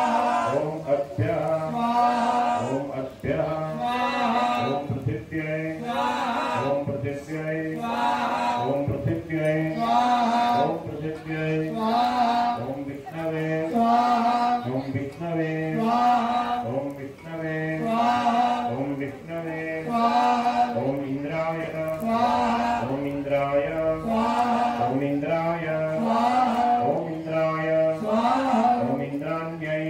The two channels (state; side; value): identical; both; correlation 1.00